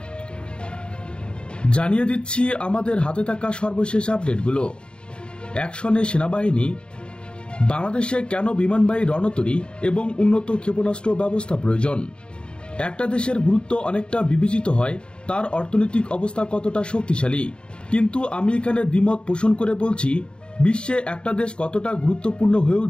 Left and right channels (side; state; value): right; late; 0.052 ms